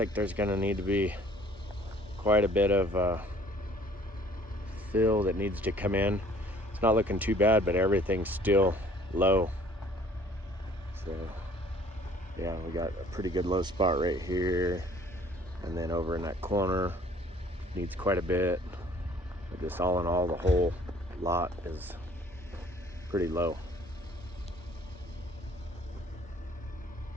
there's gonna need to be quite a bit of fill that needs to come in. It's not looking too bad, but everything's still low. So yeah, we got a pretty good low spot right here. And then over in that corner, needs quite a bit. But just all in all, the whole lot is pretty low.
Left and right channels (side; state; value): both; normal; correlation 0.55